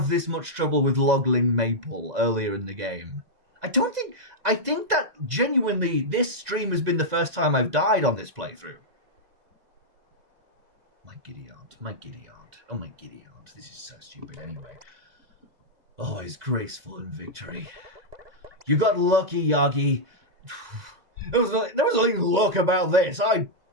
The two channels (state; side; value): late; left; 2.0 ms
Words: this much trouble with Logling Maple earlier in the game. I think that genuinely this stream has been the first time I've died on this playthrough. My giddy aunt. Oh, my giddy aunt. This is so stupid anyway. Always graceful in victory. You got lucky, Yagi. There was nothing luck about this. I